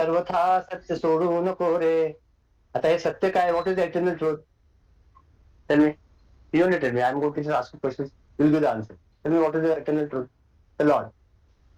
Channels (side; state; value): both; identical; correlation 1.00